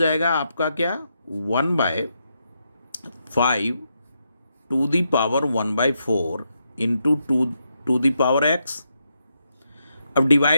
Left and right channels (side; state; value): both; inverted; correlation -0.82